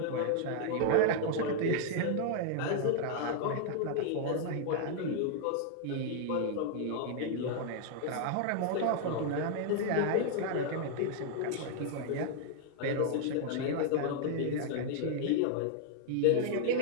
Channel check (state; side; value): different; both; correlation -0.01